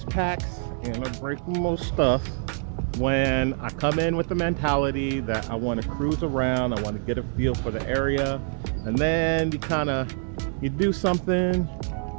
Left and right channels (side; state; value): left; silent; 61 dB below the other